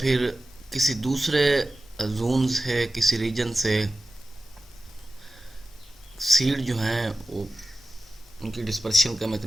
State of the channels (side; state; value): both; normal; correlation 0.93